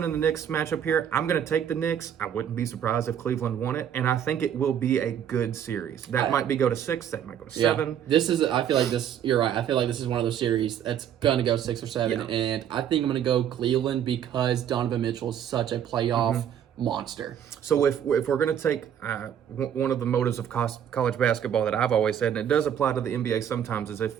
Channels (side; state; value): left; quieter; 9.4 dB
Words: and the Knicks matchup here, I'm going to take the Knicks. I wouldn't be surprised if Cleveland won it, and I think it will be a good series. That might go to 6, that might go to 7. I feel like this. You're right. I feel like this is one of those series that's going to go 6 or 7, and I think I'm going to go Cleveland because Donovan Mitchell is such a playoff monster. So if we're going to take one of the motives of college basketball that I've always said, and it does apply to the NBA sometimes, is